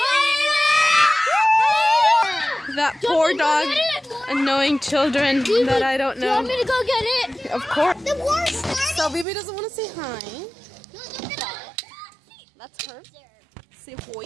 now? That poor dog annoying children that I don't Do you want know. me to go get it? Of course. The war started. So Bibi doesn't want to say hi. That's her. Say hoi.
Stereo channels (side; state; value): left; drops out; at 9.2 s